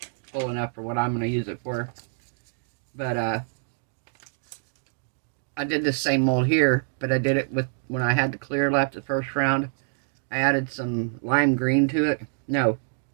full enough for what I'm going to use it for. But I did this same mold here, but I did it with, when I had the clear left the first round, I added some lime green to it. No,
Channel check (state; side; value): silent; left; digital silence